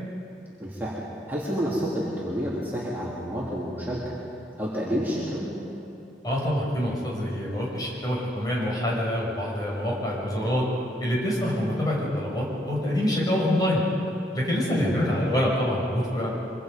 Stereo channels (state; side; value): normal; both; correlation 0.72